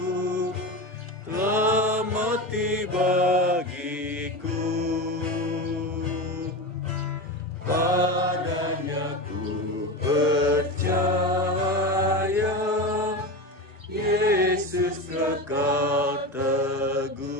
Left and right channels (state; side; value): normal; both; correlation 0.23